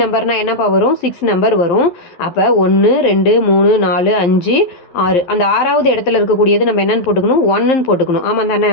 நம்பர்னால் என்னப்பா வரும், 6 நம்பர் வரும். அப்போ 1 2 3 4 5 6 அந்த 6வது இடத்துல இருக்கக்கூடியது நம்ம என்னென்னு போட்டுக்கணும், 1ன்னு போட்டுக்கணும். ஆமாம் தானே,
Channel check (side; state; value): right; late; 12 ms